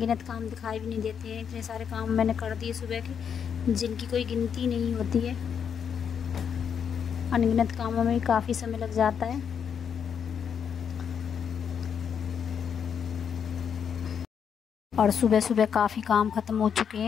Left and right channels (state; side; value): quieter; right; 7.5 dB